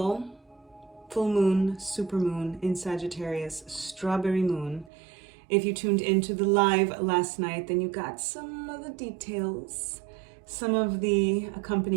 full moon, supermoon in Sagittarius, strawberry moon. If you tuned into the live last night, then you got some of the details, some of the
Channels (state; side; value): drops out; left; at 4.9 s